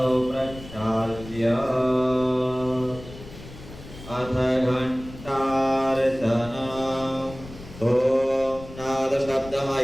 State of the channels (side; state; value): left; noise; rumble, 16 dB below the sound